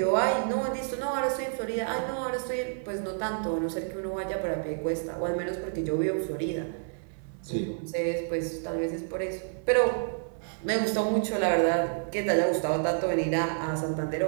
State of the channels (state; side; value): silent; left; digital silence